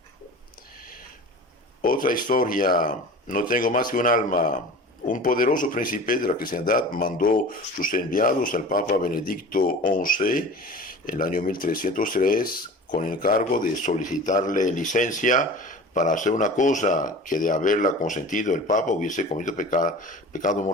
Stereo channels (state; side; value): normal; both; correlation 0.38